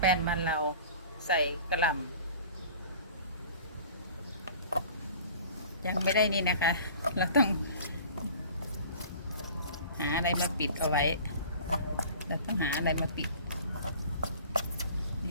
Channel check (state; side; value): inverted; both; correlation -0.44